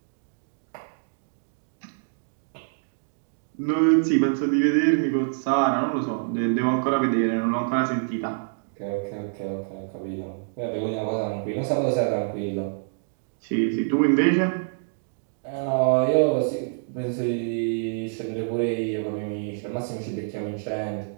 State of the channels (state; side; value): silent; left; digital silence